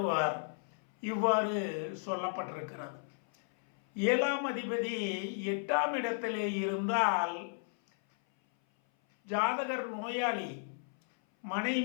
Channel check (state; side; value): silent; right; 55 dB below the other